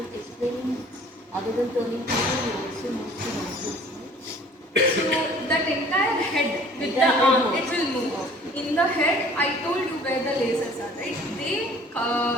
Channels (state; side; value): normal; both; correlation 0.52